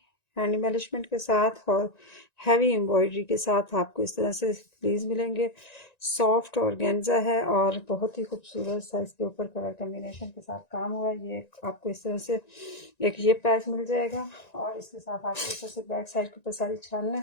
हैंड एम्बलिशमेंट के साथ और हैवी एम्ब्रॉयडरी के साथ आपको इस तरह से स्लीव्स मिलेंगे। सॉफ्ट ऑर्गेन्जा है और बहुत ही खूबसूरत सा इसके ऊपर कलर कम्बिनेशन के साथ काम हुआ है। ये आपको इस तरह से एक ये पैच मिल जाएगा और इसके साथ आपको इस तरह से बैक साइड के ऊपर सारी छानना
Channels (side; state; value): right; late; 1.9 ms